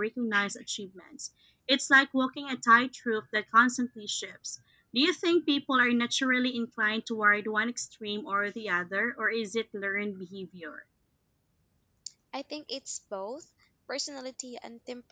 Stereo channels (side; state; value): both; identical; correlation 1.00